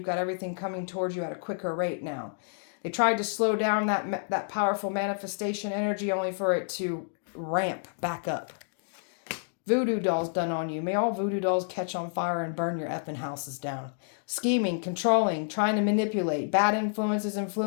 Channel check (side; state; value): right; silent; digital silence